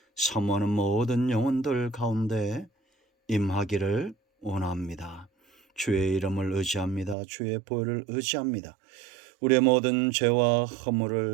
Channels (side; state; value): left; drops out; at 7.2 s